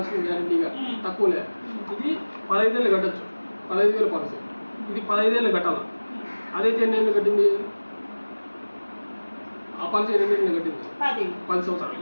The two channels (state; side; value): inverted; both; correlation -1.00